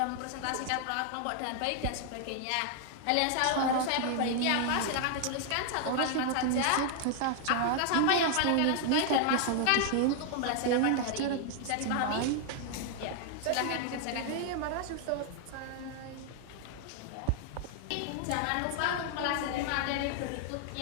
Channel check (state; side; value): different; both; correlation 0.00